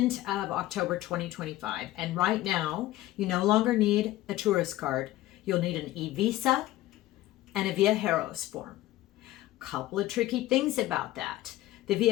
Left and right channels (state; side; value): quieter; right; 15.9 dB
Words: of October 2025, and right now you no longer need a tourist card. You'll need an e-visa and a Viajeros form. Couple of tricky things about that. The